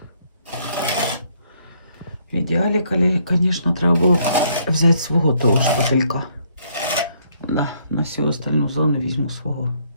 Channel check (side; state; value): both; inverted; correlation -0.68